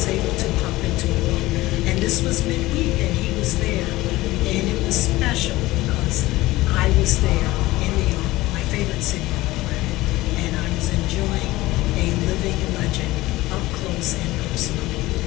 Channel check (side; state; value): right; quieter; 18.5 dB